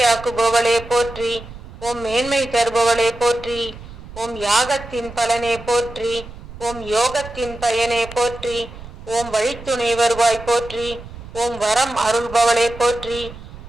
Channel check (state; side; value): noise; right; rumble, 15 dB below the sound